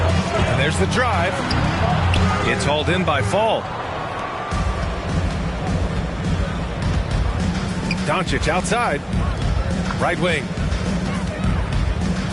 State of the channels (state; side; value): identical; both; correlation 1.00